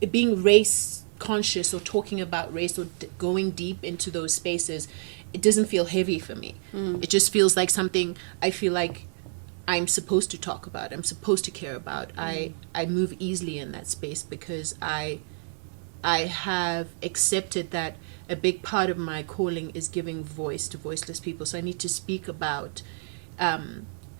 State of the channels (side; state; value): left; silent; 59 dB below the other